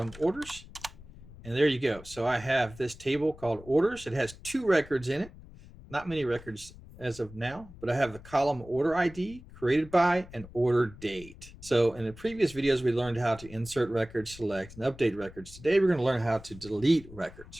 orders. And there you go. So I have this table called orders. It has 2 records in it. Not many records as of now, but I have the column order ID, created by, and order date. So in the previous videos, we learned how to insert records, select, and update records. Today, we're going to learn how to delete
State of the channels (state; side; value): noise; left; rumble, 18 dB below the sound